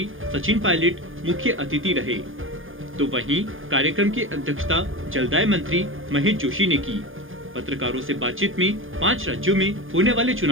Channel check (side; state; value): left; late; 0.59 ms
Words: सचिन पायलट मुख्य अतिथि रहे। तो वहीं कार्यक्रम की अध्यक्षता जलदाय मंत्री महेश जोशी ने की। पत्रकारों से बातचीत में 5 राज्यों में होने वाले